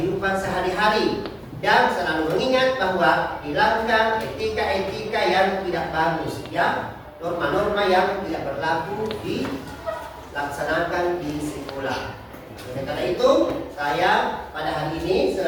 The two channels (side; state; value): both; identical; correlation 1.00